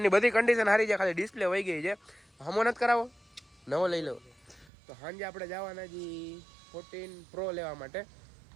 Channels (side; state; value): left; drops out; at 4.7 s